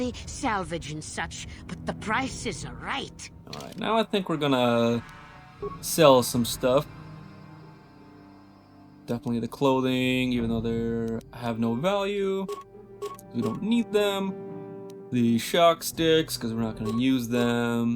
salvage and such, but the prices are right. Alright, now I think we're gonna sell some stuff. Definitely the clothing, even though they have no value. We don't need them. The shock sticks, because we're not gonna use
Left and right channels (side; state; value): both; identical; correlation 1.00